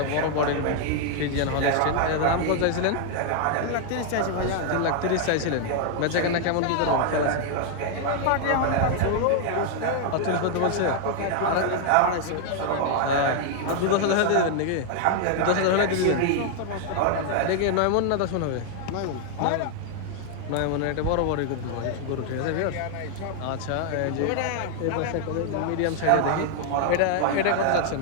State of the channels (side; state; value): both; different; correlation 0.00